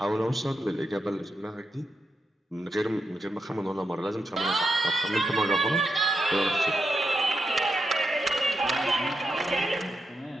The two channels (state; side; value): normal; both; correlation 0.85